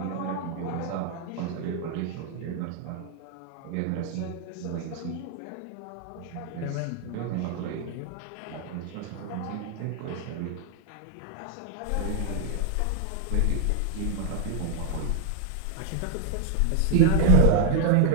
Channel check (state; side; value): different; both; correlation 0.00